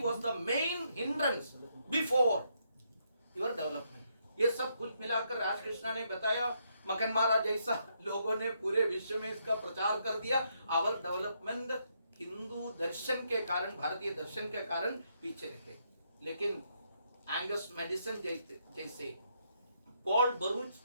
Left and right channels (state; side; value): inverted; both; correlation -0.76